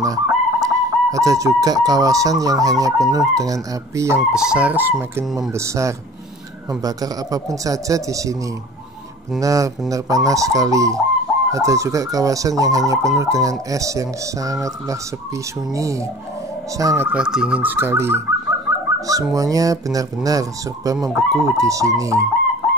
Ada juga kawasan yang hanya penuh dengan api yang besar semakin membesar, membakar apapun saja di sini. Benar-benar panas sekali. Ada juga kawasan yang hanya penuh dengan es yang sangatlah sepi sunyi, sangatlah dingin sekali. Semuanya benar-benar serba membeku di sini.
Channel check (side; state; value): both; normal; correlation 0.44